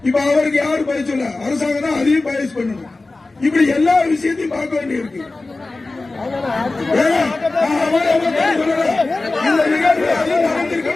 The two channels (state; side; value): quieter; right; 3.3 dB